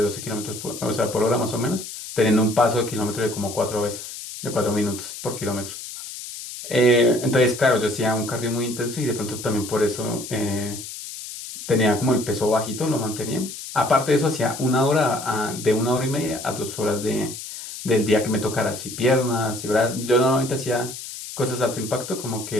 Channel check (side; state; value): left; noise; hiss, 10 dB below the sound